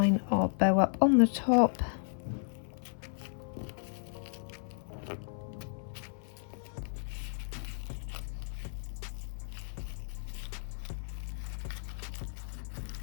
our bow up on the top.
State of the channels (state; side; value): silent; right; 55 dB below the other